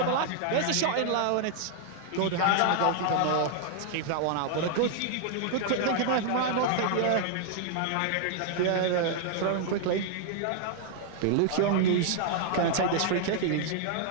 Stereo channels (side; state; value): both; different; correlation 0.00